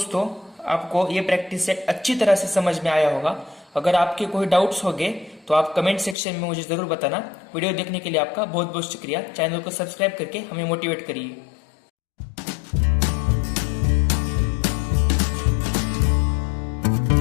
आपको ये प्रैक्टिस सेट अच्छी तरह से समझ में आया होगा। अगर आपके कोई डाउट्स होंगे तो आप कमेंट सेक्शन में मुझे जरूर बताना। वीडियो देखने के लिए आपका बहुत बहुत शुक्रिया। चैनल को सब्सक्राइब करके हमें मोटिवेट करिए।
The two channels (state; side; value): drops out; right; at 6.2 s